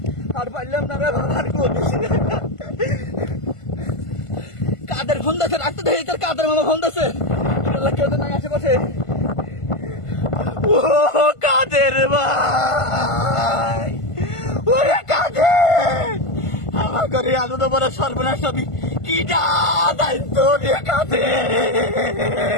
আর পারলাম না রে বাজান, কাদের ফোন দিচ্ছে, রাখতে দেখি তোর কাদের মামা ফোন দিচ্ছে। কেউ তো নাই আশেপাশে। ও কাদের ভাই, ওরে কাদের, আমার ঘরে এত বড় সর্বনাশ হবি কিটা দায়িত্ব রে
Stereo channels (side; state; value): right; late; 1.5 ms